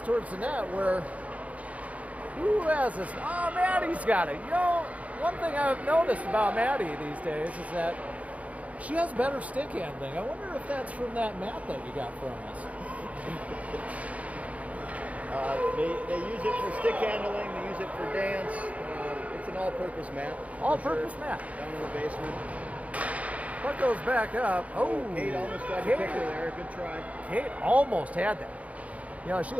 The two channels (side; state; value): left; late; 0.067 ms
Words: towards the net where who has this? Oh, Maddie's got it. One thing I've noticed about Maddie these days is that she has better stick handling. I wonder if that's from that mat that you got from us. They use it for stick handling. They use it for dance. It's an all-purpose mat. All-purpose mat. Down in the basement. Puck goes back up. Oh, Kate almost got the picker there. Good try. Kate almost had that. She